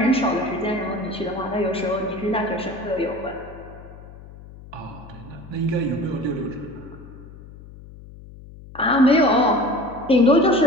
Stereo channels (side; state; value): left; noise; hum, 18 dB below the sound